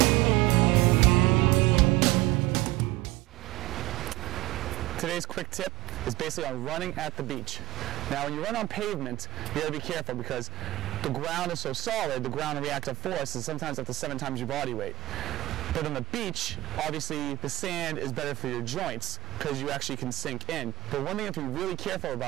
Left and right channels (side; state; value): left; quieter; 17.1 dB